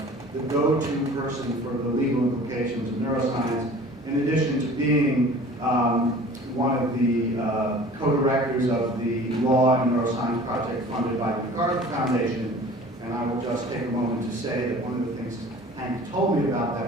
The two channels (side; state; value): both; normal; correlation 0.45